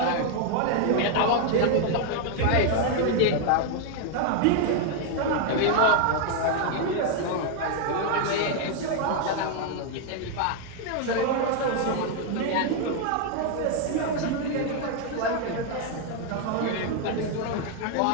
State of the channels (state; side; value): different; both; correlation 0.00